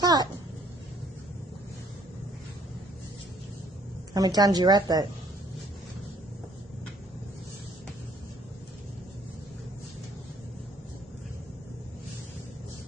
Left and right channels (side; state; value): both; normal; correlation 0.62